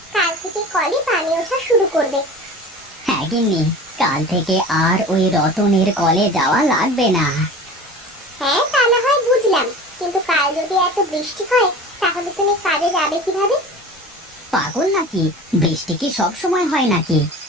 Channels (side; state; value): both; normal; correlation 0.38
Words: কাল থেকে কলে পানি ওঠা শুরু করবে। হ্যাঁ গিন্নি, কাল থেকে আর ওই রতনের কলে যাওয়া লাগবে না। হ্যাঁ, তা না হয় বুঝলাম, কিন্তু কাল যদি এত বৃষ্টি হয়, তাহলে তুমি কাজে যাবে কিভাবে? পাগল নাকি? বৃষ্টি কি সব সময় হয় নাকি?